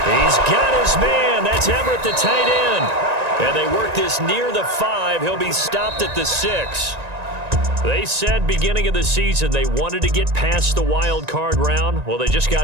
He's got his man. That's Everett, the tight end. And they work this near the 5. He'll be stopped at the 6. They said beginning of the season they wanted to get past the wild card round. Well, they just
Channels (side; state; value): left; late; 1.9 ms